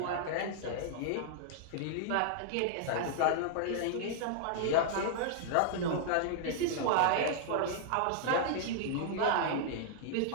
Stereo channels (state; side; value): different; both; correlation -0.01